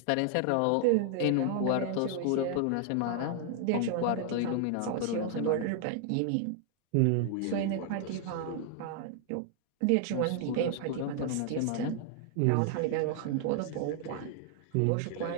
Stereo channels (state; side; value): different; both; correlation 0.00